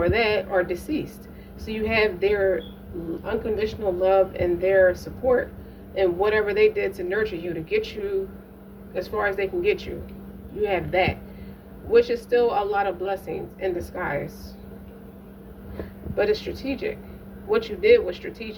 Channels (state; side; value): identical; both; correlation 1.00